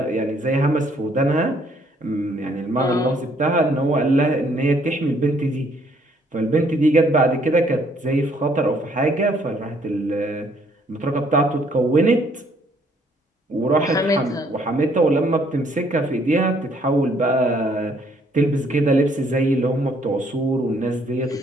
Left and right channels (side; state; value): both; normal; correlation 0.65